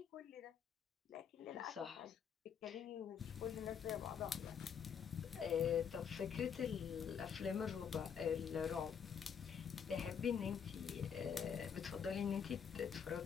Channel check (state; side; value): quieter; right; 7.3 dB